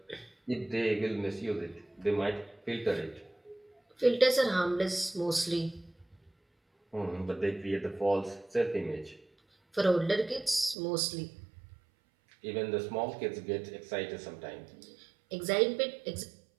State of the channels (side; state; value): left; drops out; at 10.8 s